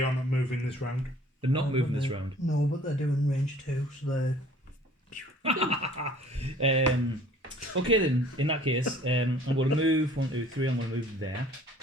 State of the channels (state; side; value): normal; both; correlation 0.53